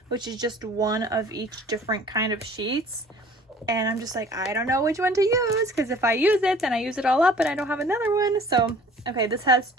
which is just one of each different kind of sheets. And I'm just like, I don't know which one to use because if I use it, then I use it all up and I don't have another one. So, okay, this has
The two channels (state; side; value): normal; both; correlation 0.50